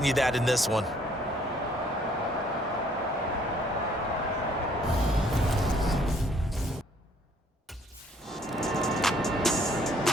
that in this one.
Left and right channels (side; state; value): both; normal; correlation 0.62